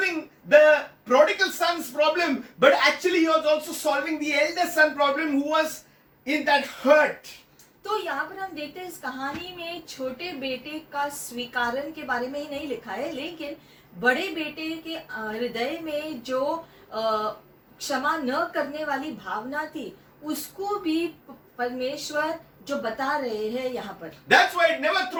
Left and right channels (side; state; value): both; identical; correlation 1.00